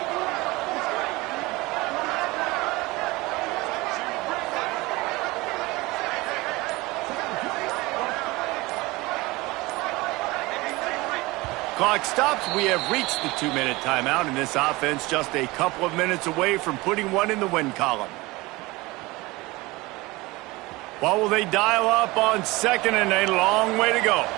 clock stops. We have reached the 2-minute timeout, and this offense just a couple of minutes away from putting one in the win column. What will they dial up on second, and a long way to go?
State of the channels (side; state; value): left; quieter; 21.9 dB